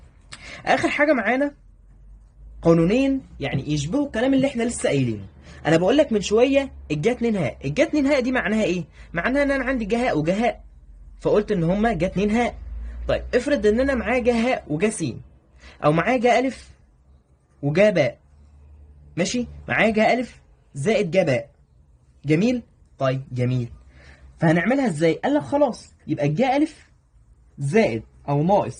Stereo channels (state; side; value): identical; both; correlation 1.00